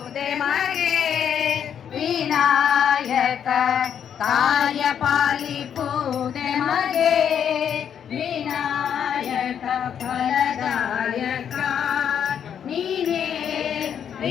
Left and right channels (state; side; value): quieter; right; 8.5 dB